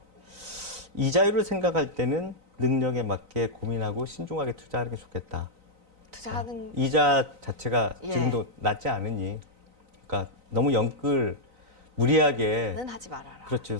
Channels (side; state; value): left; late; 3.9 ms